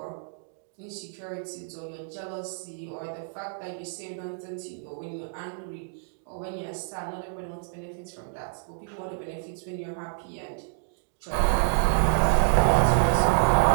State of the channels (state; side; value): silent; left; digital silence